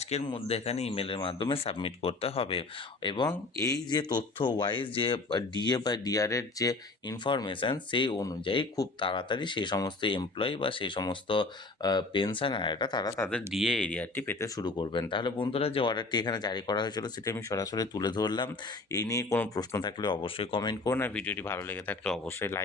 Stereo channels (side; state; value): right; quieter; 3.4 dB